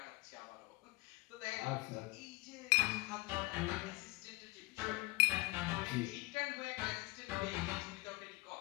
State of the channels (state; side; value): quieter; right; 23.5 dB